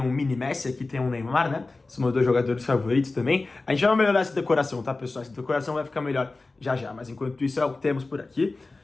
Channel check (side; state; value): right; quieter; 3.5 dB